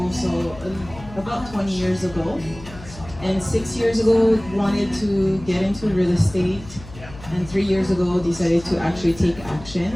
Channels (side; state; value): left; noise; hum, 16 dB below the sound